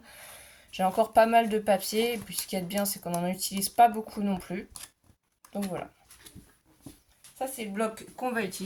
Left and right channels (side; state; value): both; identical; correlation 1.00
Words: J'ai encore pas mal de papier, et puis ce qui est bien c'est qu'on n'en utilise pas beaucoup non plus. Donc voilà. Ça c'est le bloc qu'on va